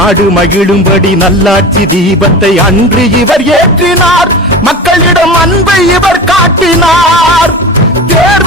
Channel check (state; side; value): normal; both; correlation 0.32